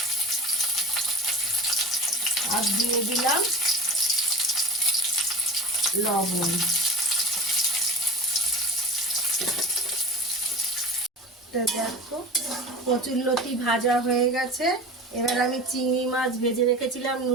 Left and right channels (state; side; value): normal; both; correlation 0.35